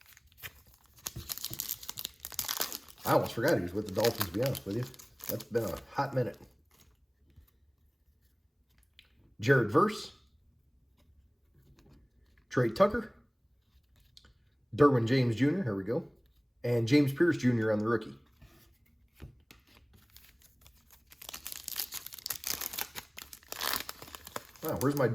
I almost forgot he was with the Dolphins, to be honest with you. That's been a hot minute. Jared Verse, Trey Tucker, Derwin James Jr., here we go, and James Pierce Jr. on the rookie. Wow, where's my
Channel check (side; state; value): both; identical; correlation 1.00